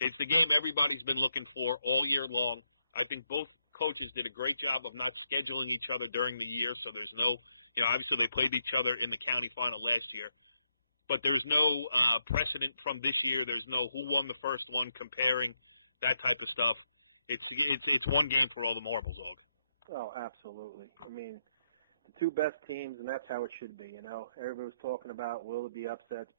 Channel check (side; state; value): both; inverted; correlation -0.78